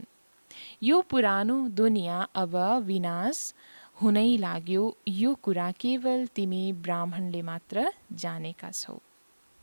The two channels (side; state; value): both; inverted; correlation -1.00